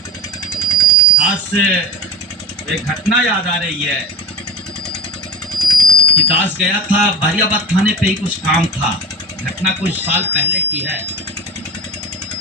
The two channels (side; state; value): both; normal; correlation 0.34